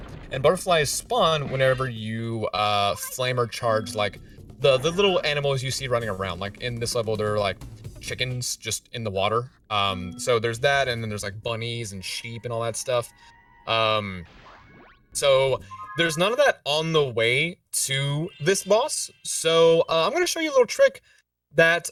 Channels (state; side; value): identical; both; correlation 1.00